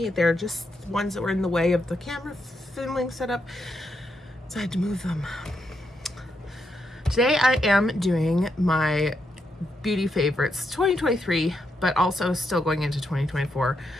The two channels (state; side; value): normal; both; correlation 0.81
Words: They're just ones that were in the way of the camera filming setup, so I had to move them. Today I am doing my beauty favorites 2023, but also still going into 2024.